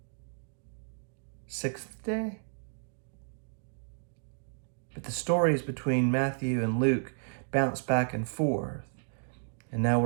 6th day? But the stories between Matthew and Luke bounce back and forth. And now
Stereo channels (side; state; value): left; silent; digital silence